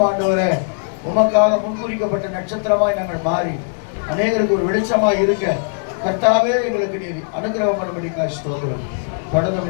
ஆண்டவரே உமக்காக முன்குறிக்கப்பட்ட நட்சத்திரமாய் நாங்கள் மாறி அநேகருக்கு ஒரு வெளிச்சமாய் இருக்க கர்த்தாவே எங்களுக்கு நீர் அனுகிரகம் பண்ணும்படிக்காக ஸ்தோத்திரம்.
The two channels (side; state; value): right; silent; digital silence